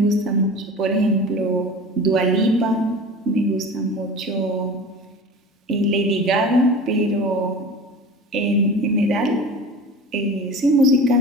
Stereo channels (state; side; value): normal; both; correlation 0.36